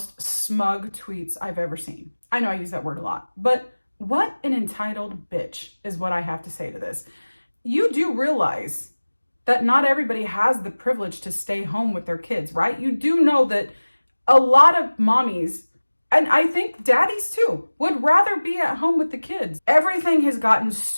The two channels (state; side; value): inverted; both; correlation -1.00